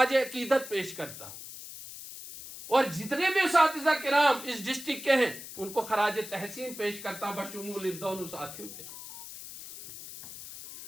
अकीदत पेश करता हूं, और जितने भी उस्तादिज़ा किराम इस डिस्ट्रिक्ट के हैं उनको खराज तहसीन पेश करता हूं, बशमूल इन दोनों साथियों के।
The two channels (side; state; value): left; noise; hiss, 12 dB below the sound